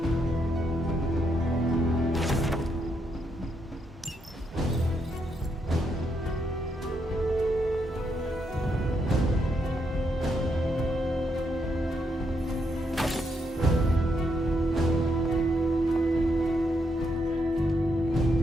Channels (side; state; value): both; normal; correlation 0.79